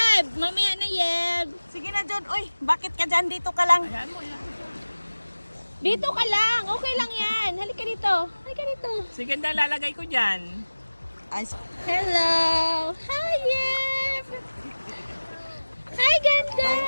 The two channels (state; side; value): inverted; both; correlation -1.00